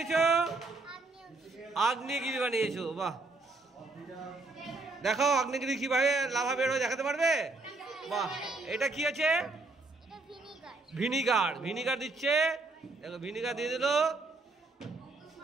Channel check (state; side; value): quieter; left; 3.4 dB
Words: আগ্নেয়গিরি বানিয়েছো। বাহ, দেখো আগ্নেয়গিরি কিভাবে লাভা বের হয় দেখাতে পারবে? বাহ, এটা কি আছে? ভিনিগার। ভিনিগার দিচ্ছে, দেখো ভিনিগার দিয়ে দিল।